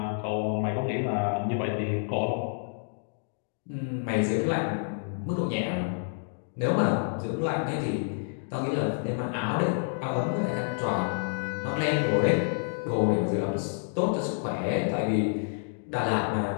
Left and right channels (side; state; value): right; silent; digital silence